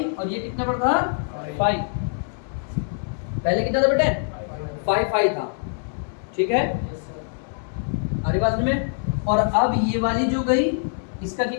और ये कितने पर था, 5। पहले कितना था बेटे, 5 था, ठीक है, अरे बात में। और अब ये वाली जो गई, इसका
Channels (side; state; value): right; silent; 59 dB below the other